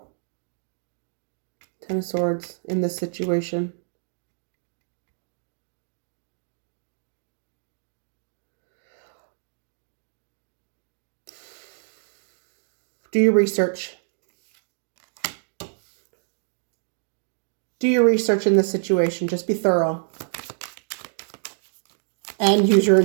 10 of Swords in this situation. Do your research. Do your research in this situation. Just be thorough. And use your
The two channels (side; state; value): left; silent; digital silence